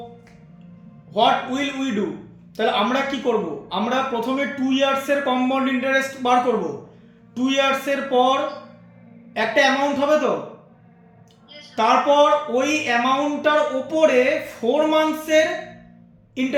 what will we do? তাহলে আমরা কি করব? আমরা প্রথমে 2 ইয়ার্স এর কম্পাউন্ড ইন্টারেস্ট বার করব। 2 ইয়ার্স এর পর একটা অ্যামাউন্ট হবে তো, তারপর ওই অ্যামাউন্টটার উপরে 4 মান্থসের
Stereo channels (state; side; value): identical; both; correlation 1.00